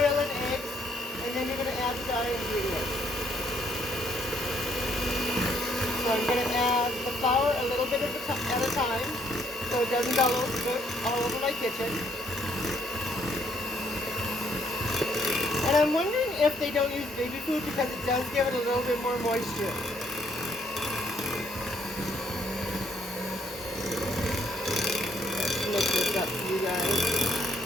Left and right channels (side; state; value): both; normal; correlation 0.68